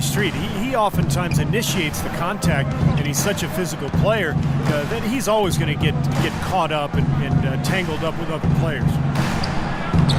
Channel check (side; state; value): both; identical; correlation 1.00